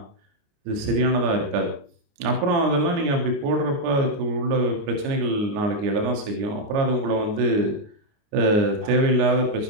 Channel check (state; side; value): late; left; 29 ms